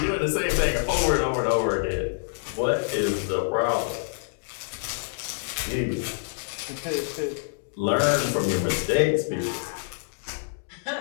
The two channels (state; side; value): silent; right; digital silence